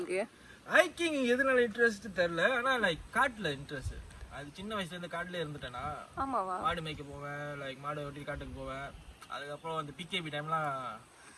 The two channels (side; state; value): both; identical; correlation 1.00